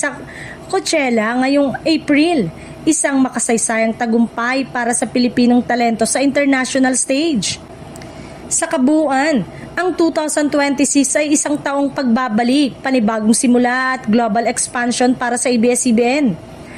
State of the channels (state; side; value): identical; both; correlation 1.00